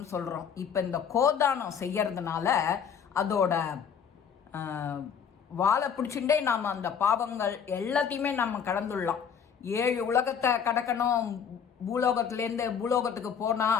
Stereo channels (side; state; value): right; quieter; 7.4 dB